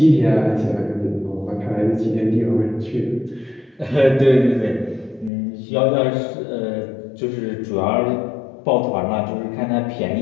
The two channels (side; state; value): right; drops out; at 5.3 s